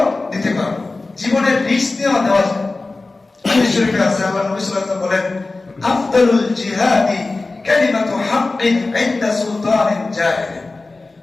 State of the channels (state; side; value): quieter; right; 3.4 dB